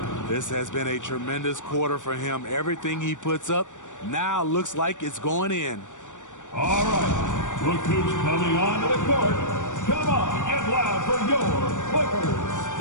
This has been a tremendous quarter for him. Everything he puts up now looks like it's going in. All right. Look who's coming onto the court. Come on, get loud for your Clippers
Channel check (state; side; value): late; right; 0.86 ms